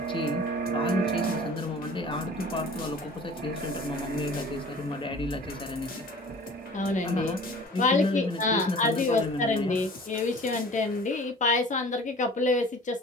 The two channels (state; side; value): normal; both; correlation 0.44